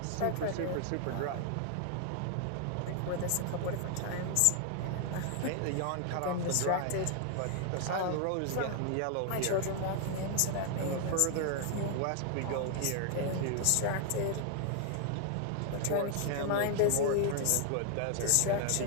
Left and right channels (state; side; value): different; both; correlation 0.00